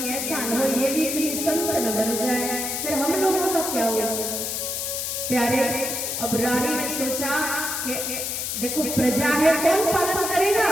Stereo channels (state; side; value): noise; left; hiss, 2 dB below the sound